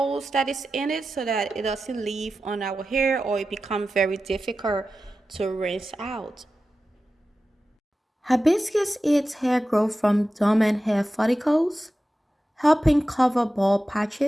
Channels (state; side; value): normal; both; correlation 0.93